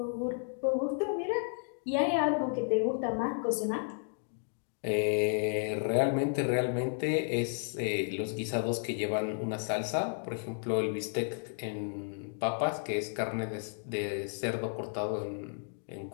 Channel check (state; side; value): silent; right; digital silence